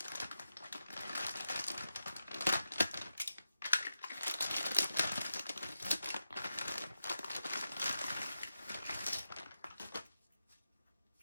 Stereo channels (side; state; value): both; inverted; correlation -0.90